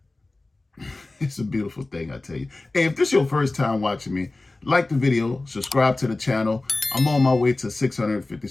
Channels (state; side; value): quieter; right; 3.1 dB